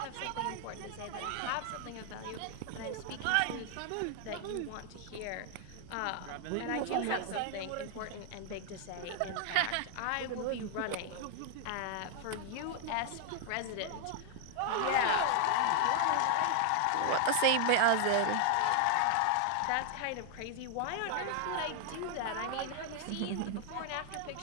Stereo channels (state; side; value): different; both; correlation 0.00